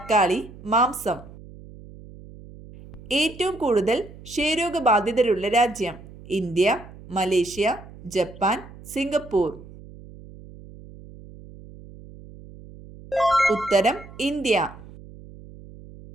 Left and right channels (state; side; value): noise; right; hum, 18 dB below the sound